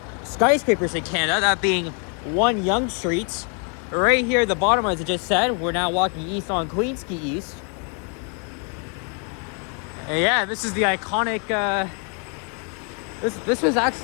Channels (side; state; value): right; quieter; 39.2 dB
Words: skyscrapers in Canada, that being 1 Yonge Street. Right here at the bottom, as I just said, we're now walking east on Quay East. And yeah, this is the iconic, this was